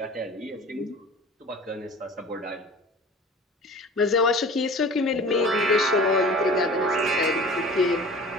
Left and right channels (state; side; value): normal; both; correlation 0.41